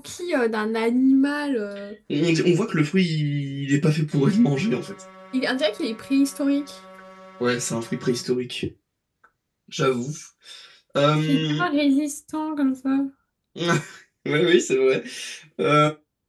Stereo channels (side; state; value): both; identical; correlation 1.00